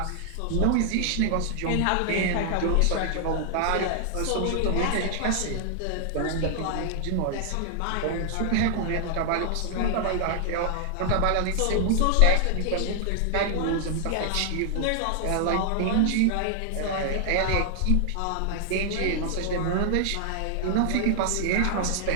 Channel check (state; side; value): different; both; correlation 0.00